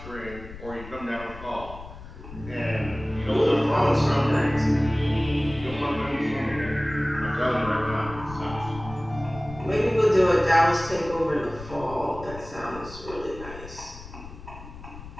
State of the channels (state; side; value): noise; left; rumble, 14 dB below the sound